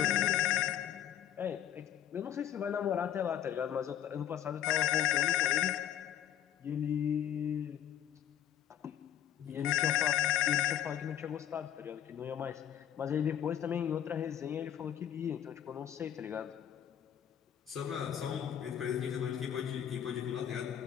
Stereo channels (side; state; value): right; quieter; 10.2 dB